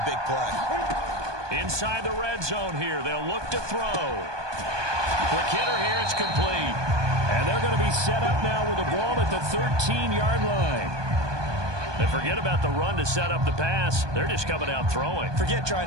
big play. Inside the red zone here, they'll look to throw. Quick hitter here, it's complete. And they're going to be set up now with the ball at the 13-yard line. And forget about the run to set up the pass. They're just coming out throwing. Forget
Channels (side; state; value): left; late; 1.2 ms